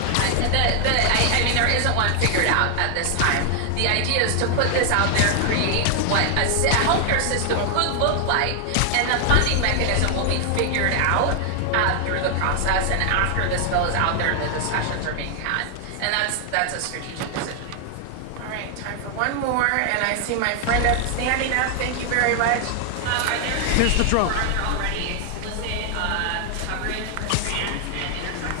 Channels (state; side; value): different; both; correlation 0.00